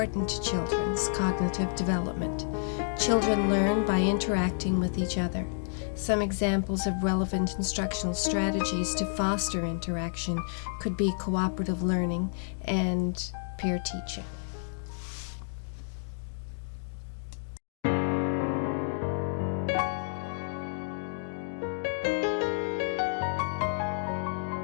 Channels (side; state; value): right; silent; digital silence